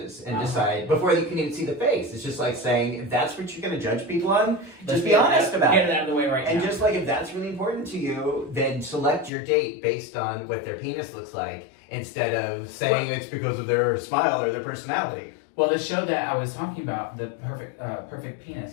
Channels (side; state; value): right; drops out; at 9.3 s